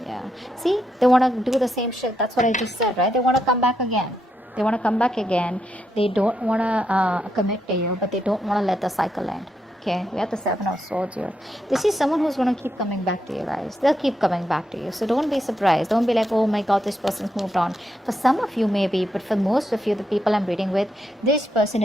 Yeah. See, they want to do the same shit. That's what I just said, right? They want to come back again. They want to come back again. They don't want to commit to you, but they don't want to let the cycle end. Okay, we have the Seven of Swords here. This is someone who's going to keep coming back to you guys. They'll keep coming back to you. So don't be surprised. Don't be like, oh my God, this person's moved on. For some of you, maybe, but for most of you, the people I'm reading with, this person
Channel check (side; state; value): both; normal; correlation 0.82